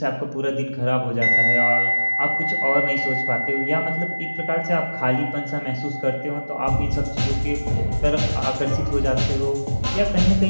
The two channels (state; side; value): inverted; both; correlation -1.00